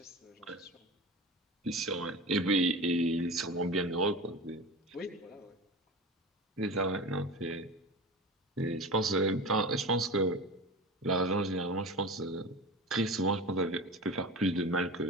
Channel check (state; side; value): normal; both; correlation 0.31